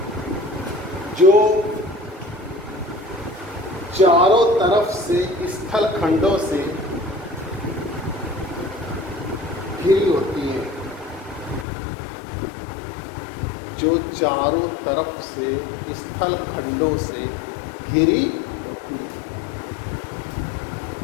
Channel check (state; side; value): drops out; right; at 11.7 s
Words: जो चारों तरफ से स्थल खंडों से घिरी होती है। जो चारों तरफ से स्थल खंडों से घिरी होती है